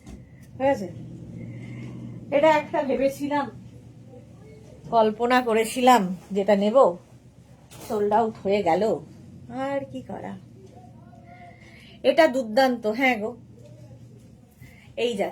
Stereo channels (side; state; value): both; identical; correlation 1.00